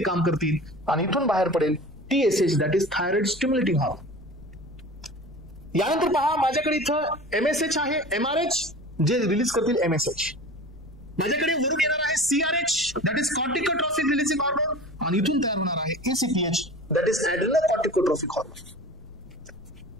काम करतील, आणि इथून बाहेर पडेल TSH, that is thyroid stimulating hormone. यानंतर पहा माझ्याकडे इथं MSH आहे, MRH जे रिलीज करतील MSH. माझ्याकडे वरून येणार आहे CRH, that is corticotrophic releasing hormone, आणि इथून तयार होणार आहे ACTH, that is adrenocorticotrophic hormone.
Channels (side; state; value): left; noise; rumble, 20 dB below the sound